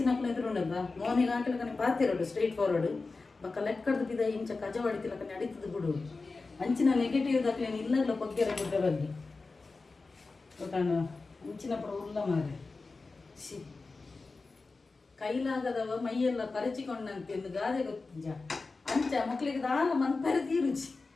ಎದುರುಂಡದ ಮೋನಿಗೆ ಹಾಕಿಲಕನೆ ಪಾತಿರೋಡು ಸ್ಟ್ರೈಟ್ ಫಾರ್ವರ್ಡ್ ಬಕ್ಕ ಲೆಕ್ಕಡ್ದು ಬಿದ ಇಂಚ ಕಜ ಹೊಡಿತಿಲಕನೆ ಅಡಿತದ ಬಿಡು ಅಂಚಿನ ನೆಗೆಟಿವ್ ದಕ್ಲೇನು ಇಲ್ಲಲ್ಲ ಬಗ್ಗೆರ ಗುಡ್ಡ ಬಗ್ಗೆ ಗೊತ್ತಾಂಡ ಅಂಚಿನ ಪುರ ಉಲ್ಲ ಮಾರೆ ಸಿ ಕೈಲಾಗದವ ಮೈಯೆಲ್ಲ ಪರಚಿಕೊಂಡಂತೆ ಎಂದು ಗಾದೆ ಗೊತ್ತಿಂಜ ಅಂಚ ಮಕ್ಳಿಗೆ ದಾಲ ಮನ್ಪರೆ ತೀರುಚಿ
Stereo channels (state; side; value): quieter; right; 3.9 dB